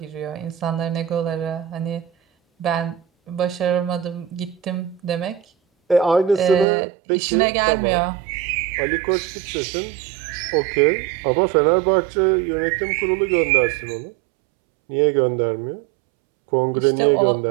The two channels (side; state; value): left; drops out; at 6.7 s